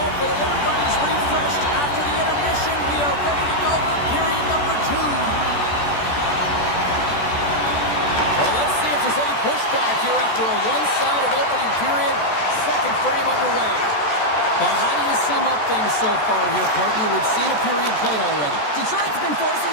everybody's refreshed after the intermission. We are ready to go for period number 2. Well, let's see if there's any pushback here after a one-sided opening period. Second frame underway. Well, how do you sum up things so far here, partner? We've seen a period played already. Detroit's been forcing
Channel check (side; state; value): right; late; 14 ms